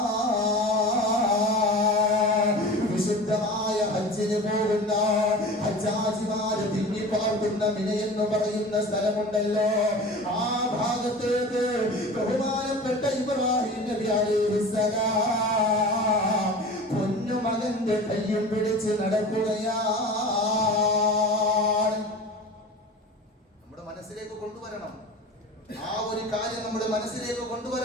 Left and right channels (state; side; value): normal; both; correlation 0.36